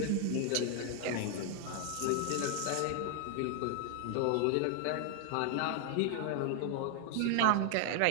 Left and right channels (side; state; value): both; different; correlation 0.00